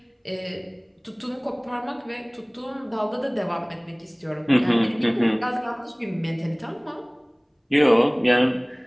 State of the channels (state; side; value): identical; both; correlation 1.00